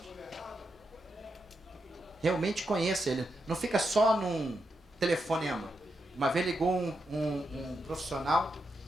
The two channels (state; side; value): normal; both; correlation 0.85